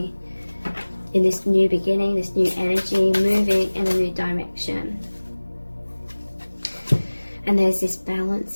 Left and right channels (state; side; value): inverted; both; correlation -1.00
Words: in this new beginning, this new energy, moving in a new direction. And there's this balance